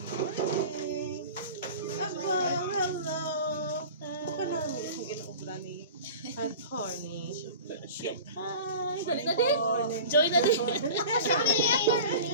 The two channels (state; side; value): inverted; both; correlation -0.37